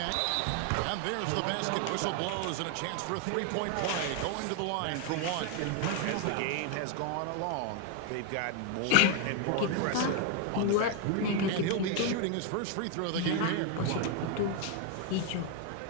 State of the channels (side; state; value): both; different; correlation 0.01